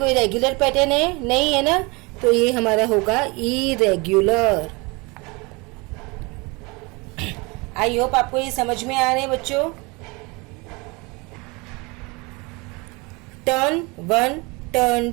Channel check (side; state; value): left; quieter; 26.9 dB